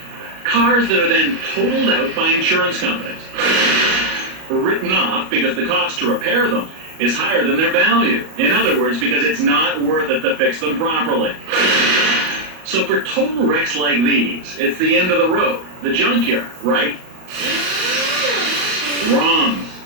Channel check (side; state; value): left; late; 38 ms